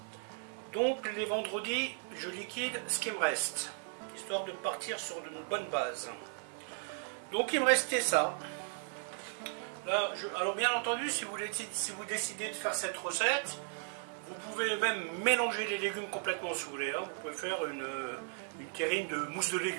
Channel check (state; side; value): silent; left; 54 dB below the other